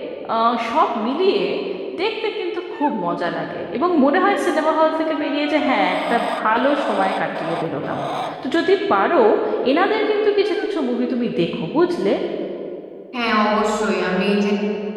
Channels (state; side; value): identical; both; correlation 1.00